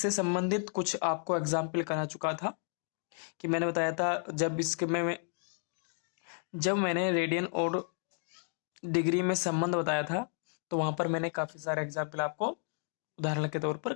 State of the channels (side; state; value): right; silent; 56 dB below the other